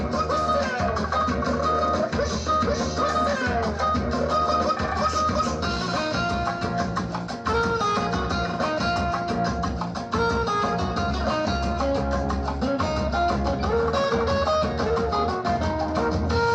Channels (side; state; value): both; identical; correlation 1.00